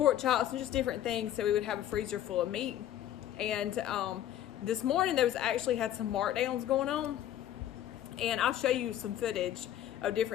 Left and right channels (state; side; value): quieter; right; 11.8 dB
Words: chops, and just different things so we would have a freezer full of meat. And this morning there was actually had some markdowns going on, and I'll show you some footage of